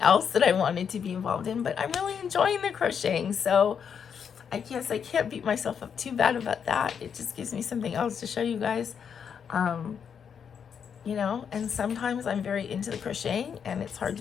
that I wanted to be involved in. But I'm really enjoying the crocheting, so I guess I can't beat myself up too bad about that. It just gives me something else to show you guys. You know, and sometimes I'm very into the crocheting and it's hard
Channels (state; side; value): quieter; right; 7.3 dB